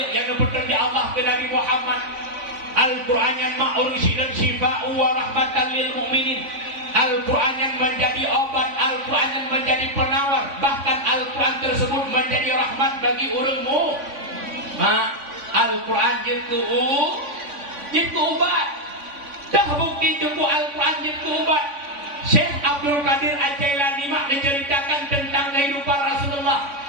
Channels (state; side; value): late; left; 3.5 ms